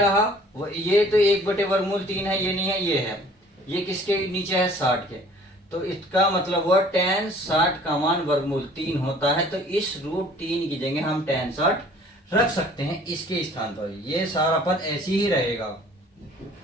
ये तो 1/वर्गमूल 3 है, ये नहीं है, ये है, ये किसके नीचे है 60 के। तो इसका मतलब हुआ tan 60 का मान वर्गमूल 3 होता है। तो इस √3 की जगह हम tan 60 रख सकते हैं इसके स्थान पर, ये सारा पद ऐसे ही रहेगा।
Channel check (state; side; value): normal; both; correlation 0.53